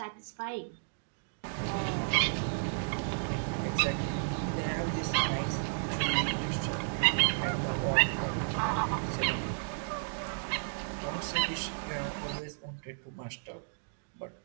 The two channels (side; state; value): left; silent; digital silence